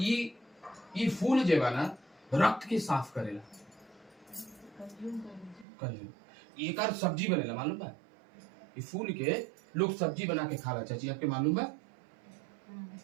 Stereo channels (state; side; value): drops out; left; at 5.7 s